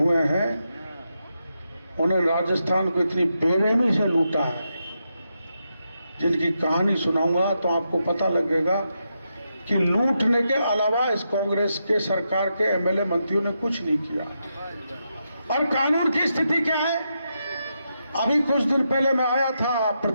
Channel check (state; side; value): inverted; both; correlation -0.84